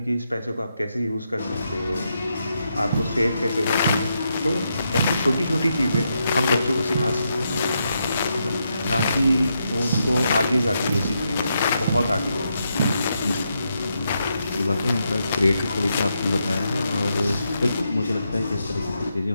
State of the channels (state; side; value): inverted; both; correlation -0.82